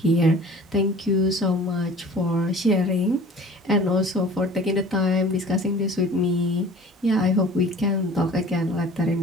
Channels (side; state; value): both; normal; correlation 0.45